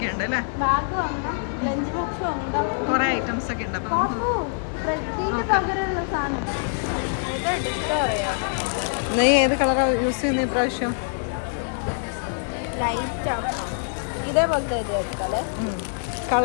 അല്ലേ? കുറെ ഐറ്റംസ് ഒക്കെ ഉണ്ട്. അപ്പൊ നമുക്ക് നോക്കാം. നീ ഏത് കളറാ യൂസ് ചെയ്യുന്നത് ഇപ്രാവശ്യം? ഇതേപോലത്തെ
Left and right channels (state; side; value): silent; right; digital silence